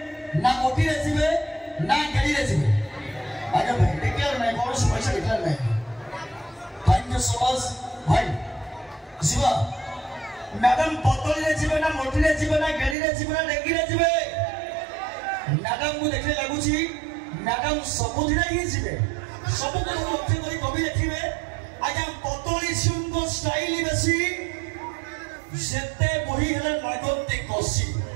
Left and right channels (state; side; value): drops out; left; at 13.0 s